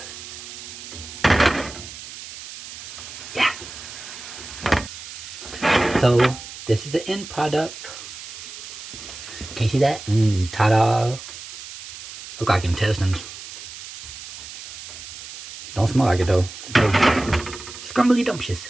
Yeah. So, this is the end product. Can you see that? Ta-da. Look like intestines. Don't smell like it though. Scrumbly dumptious.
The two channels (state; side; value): noise; right; hiss, 12 dB below the sound